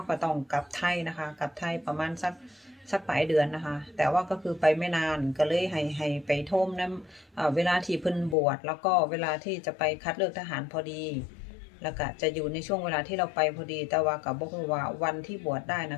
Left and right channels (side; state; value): right; drops out; at 8.3 s